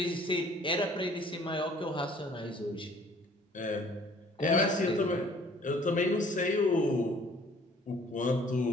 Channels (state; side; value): normal; both; correlation 0.55